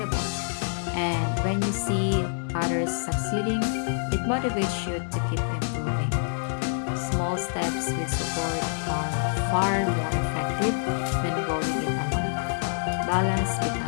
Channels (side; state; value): right; silent; digital silence